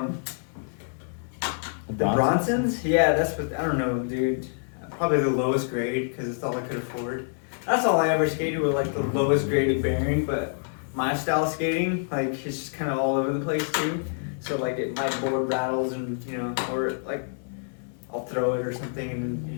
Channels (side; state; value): right; silent; 60 dB below the other